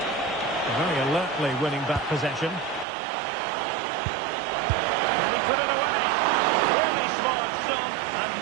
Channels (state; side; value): drops out; left; at 2.9 s